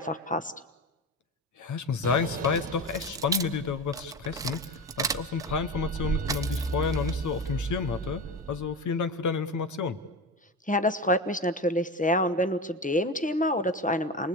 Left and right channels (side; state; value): both; normal; correlation 0.25